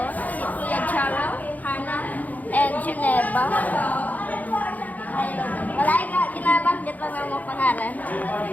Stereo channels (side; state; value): right; late; 0.079 ms